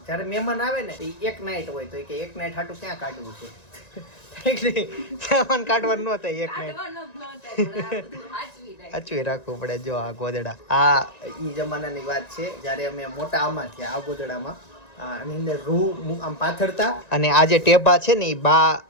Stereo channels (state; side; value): late; right; 1.9 ms